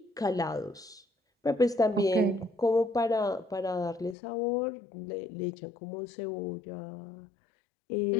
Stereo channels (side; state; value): right; drops out; at 4.2 s